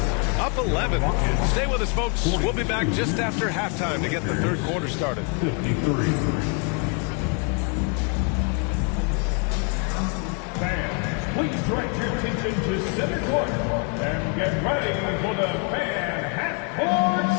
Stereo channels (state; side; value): quieter; right; 36.1 dB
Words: up 11. Stay with us, folks. We'll be back just after halftime to get the third quarter started. 53. Fans, please direct your attention to center court and get ready for the fan half-court